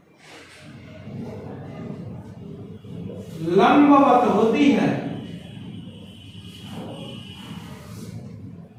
लंबवत होती है।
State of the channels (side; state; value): both; identical; correlation 1.00